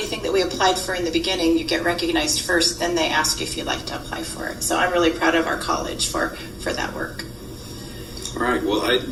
that we applied for in the beginning. You get recognized first, then they ask you if you'd like to apply for it. So I'm really proud of our college for that work. All right. Well,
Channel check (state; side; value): identical; both; correlation 1.00